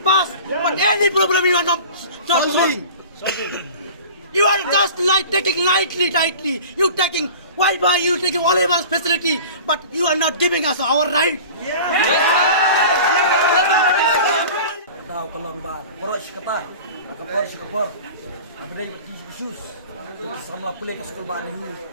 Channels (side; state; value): both; inverted; correlation -0.39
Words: but any problem you are not solving. You are just taking lightly. You taking Wi-Fi, you taking all of our facility, but you are not giving us our right. Tahu kalau mbak, boros kata, atau boros kapor, apa dia isu, samla pulih ke sekolah baru,